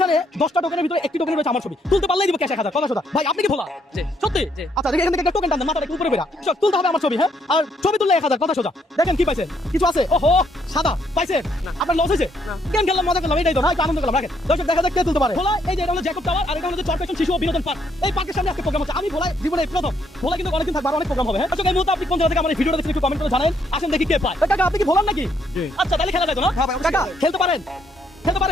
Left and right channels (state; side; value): normal; both; correlation 0.72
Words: 10টা টোকেনের ভিতরে একটি টোকেন রয়েছে আমার ছবি। তুলতে পারলেই দিব ক্যাশ 1000, কথা সোজা। ভাই আপনি কি ভোলা? সত্যি? আচ্ছা এখান থেকে একটা টোকেন টান দেন, মাথাটা একটু উপরে বেরা। সব তুলতে হবে আমার ছবি, হ্যাঁ? আর ছবি তুললে 1000, কথা সোজা। দেখেন কি পাইছেন? কিছু আছে? ওহো সাদা পাইছেন? আপনার লস হয়েছে? কেন খেললাম, মজা করলাম, এটাই তো না, একটু আনন্দ করলাম। রাখেন দর্শক, দেখা যাক কে তুলতে পারে। ভোলা এই যে এটা হলো জ্যাকব টাওয়ার, আর এটা হলো চরপেশন শিশু ও বিনোদন পার্ক। এই পার্কের সামনে আজকে প্রোগ্রাম হচ্ছে। আমি ভোলা জীবনে প্রথম, ভোলা কিন্তু অনেকদিন থাকবে, আর অনেক প্রোগ্রাম হবে। হ্যাঁ দর্শক, এই মুহূর্তে আপনি কোন জায়গা থেকে আমার এই ভিডিওটা দেখছেন একটু কমেন্ট করে জানান। আসেন দেখি কে পায়। কাকা আপনি কি ভোলার নাকি? আচ্ছা তাহলে খেলা যায় তো না? কাকা খেলতে পারেন? খেলতে